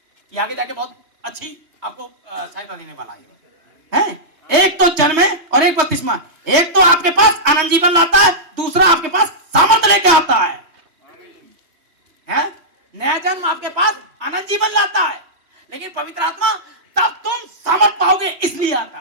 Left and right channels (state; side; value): late; left; 3.1 ms